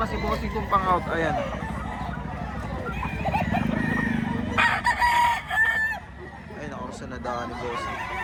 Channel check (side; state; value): both; identical; correlation 1.00